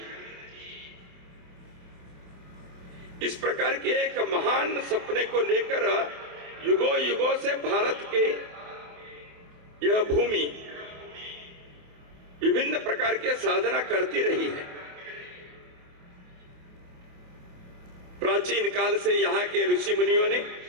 इस प्रकार के एक महान सपने को लेकर युगों युगों से भारत के यह भूमि विभिन्न प्रकार के साधना करती रही है। प्राचीन काल से यहाँ के ऋषि मुनियों ने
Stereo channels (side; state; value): left; late; 28 ms